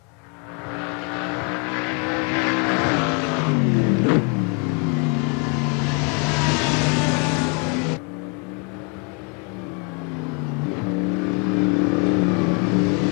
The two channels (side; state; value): right; quieter; 34.9 dB